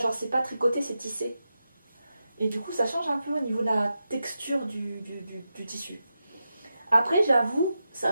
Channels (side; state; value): both; inverted; correlation -0.89